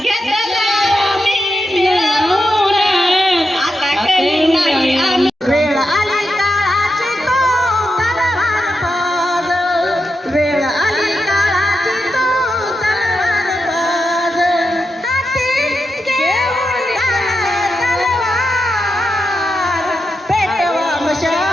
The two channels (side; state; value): both; normal; correlation 0.87